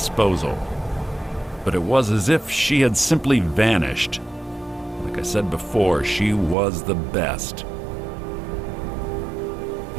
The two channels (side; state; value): left; drops out; at 6.6 s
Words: But it was as if she had simply vanished. Like I said before, she was the best.